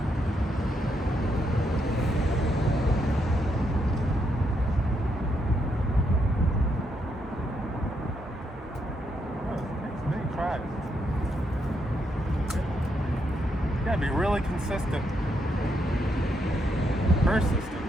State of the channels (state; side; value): normal; both; correlation 0.78